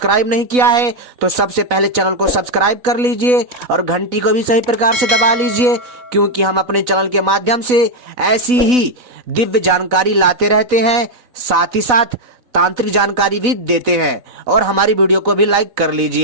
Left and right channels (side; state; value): left; late; 4.0 ms